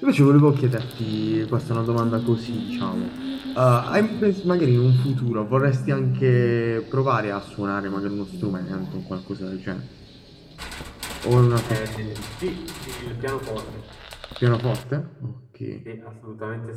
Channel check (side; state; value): both; identical; correlation 1.00